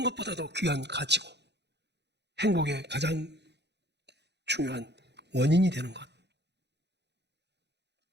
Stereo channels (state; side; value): late; left; 0.50 ms